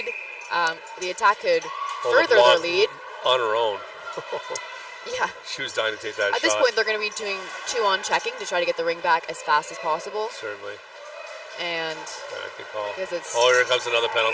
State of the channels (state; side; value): identical; both; correlation 1.00